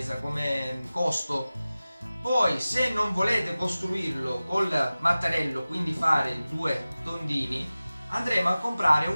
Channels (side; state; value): both; inverted; correlation -0.97